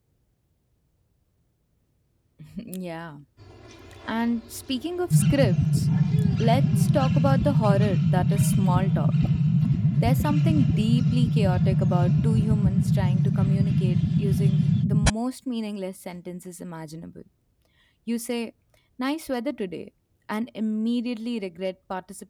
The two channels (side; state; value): both; identical; correlation 1.00